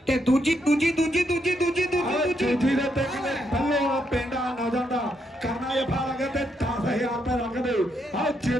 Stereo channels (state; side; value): normal; both; correlation 0.78